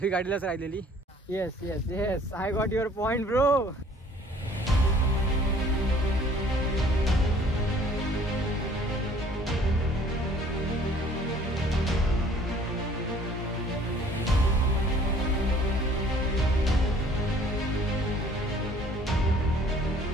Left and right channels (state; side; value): normal; both; correlation 0.55